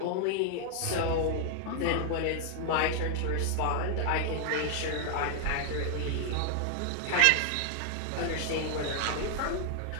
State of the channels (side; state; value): both; different; correlation 0.00